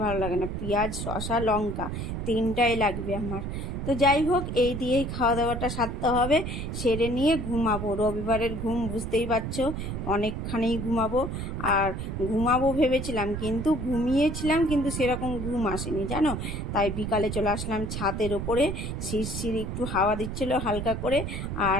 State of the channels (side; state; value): right; noise; rumble, 4 dB below the sound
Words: ভালো লাগে না। পেঁয়াজ, শসা, লঙ্কা তিনটাই লাগবে আমার। তো যাই হোক, এই দিয়েই খাওয়া দাওয়াটা সারতে হবে। সেরে নিয়ে ঘুমাবো। রবিবারের ঘুম বুঝতেই পারছো, অনেকখানি ঘুমাবো। আর ঘুমাবো ভেবেছিলাম, কিন্তু ঘুমিয়েছিলাম, কিন্তু সেরকম ঘুম আসেনি জানো। তাই বিকালে চলে আসলাম ছাদের ওপরে। শিরশির একটু হাওয়া দিচ্ছিল হালকা করে।